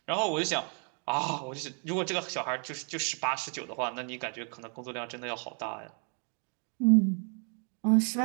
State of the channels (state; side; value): quieter; left; 39.8 dB